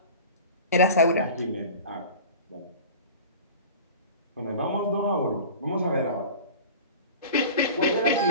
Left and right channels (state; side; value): inverted; both; correlation -0.37